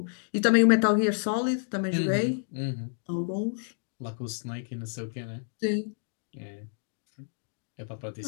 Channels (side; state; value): right; silent; 58 dB below the other